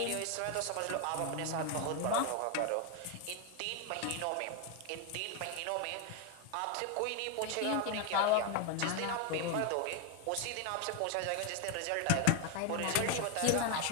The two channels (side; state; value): both; different; correlation 0.01